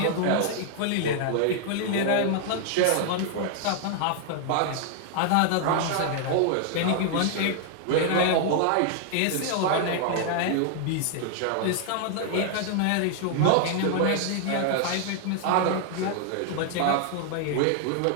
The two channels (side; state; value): both; different; correlation 0.00